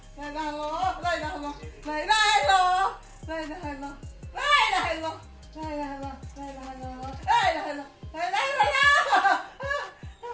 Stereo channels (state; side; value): identical; both; correlation 1.00